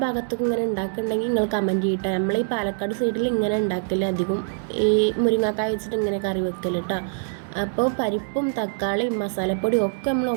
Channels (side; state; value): left; silent; digital silence